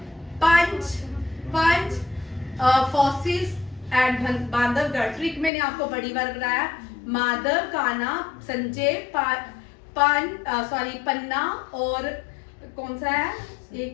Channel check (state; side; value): drops out; right; at 5.5 s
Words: पंच फॉसिल्स एट बांधवगढ़। ट्रिक मैंने आपको बड़ी बार बताया। माधव, कान्हा, संजय, पन्ना और कौन सा है?